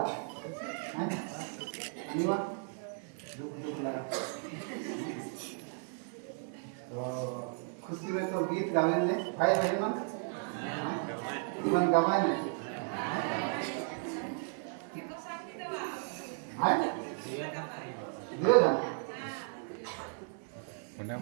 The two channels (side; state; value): left; silent; 54 dB below the other